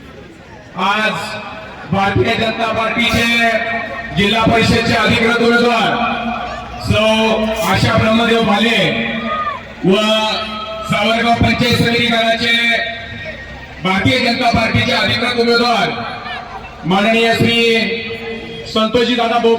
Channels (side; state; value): both; identical; correlation 1.00